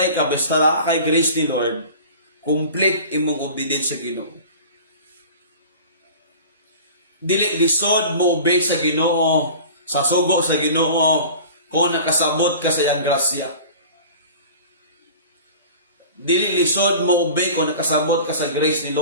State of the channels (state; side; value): inverted; both; correlation -0.40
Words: ka, basta na kay grace ni Lord, complete imong obedience sa Ginoo. Dili lisod mo obey sa Ginoo, sa sugo sa Ginoo, kung nakasabot ka sa iyang grasya. Dili lisod mo obey kung nakasabot ka sa grace ni